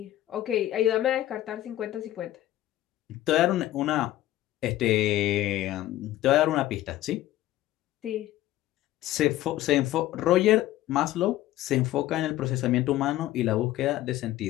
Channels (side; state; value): right; quieter; 14.6 dB